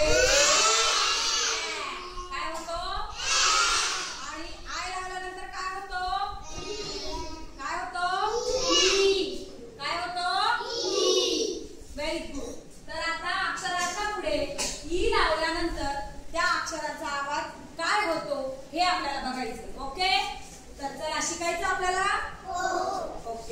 काय होतो, आणि आय लावल्यानंतर काय होतो, काय होतो, काय होतो, व्हेरी गुड। तर आता अक्षराच्या पुढे ई लावल्यानंतर त्या अक्षराचा आवाज काय होतो हे आपल्याला बघायचं। ओके, तर चला शिकायचं आपल्याला।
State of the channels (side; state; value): both; identical; correlation 1.00